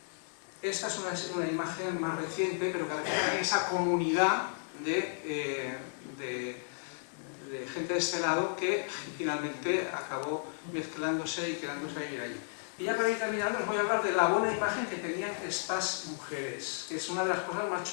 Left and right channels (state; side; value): silent; right; digital silence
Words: Esta es una imagen más reciente, pero que refleja esa comunidad de gente de este lado que finalmente acabó mezclándose y quedándose a vivir allí. Y ya para ir terminando os voy a hablar de la buena imagen que tenían estas mujeres, que es una de las cosas más